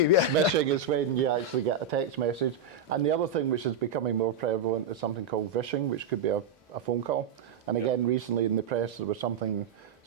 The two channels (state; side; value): quieter; left; 4.7 dB